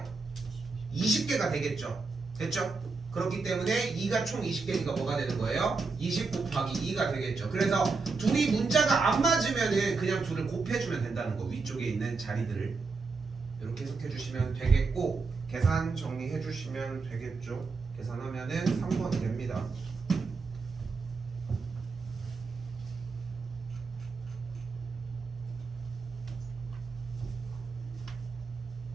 20개가 되겠죠. 됐죠? 그렇기 때문에 2가 총 20개니까 뭐가 되는 거예요? 20 곱하기 2가 되겠죠. 그래서 둘이 문자가 안 맞으면은 그냥 둘을 곱해주면 된다는 거. 위쪽에 있는 자리들을 이렇게 해석해 주시면 되겠고 계산 정리해 주시면 되겠죠. 계산하면은 3번이 됩니다.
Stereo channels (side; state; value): left; quieter; 4.3 dB